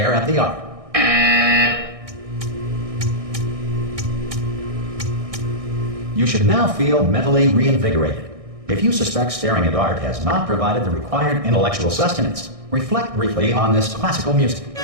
at the art. You should now feel mentally reinvigorated. If you suspect staring at art has not provided the required intellectual sustenance, reflect briefly on this classical music.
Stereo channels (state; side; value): late; left; 1.6 ms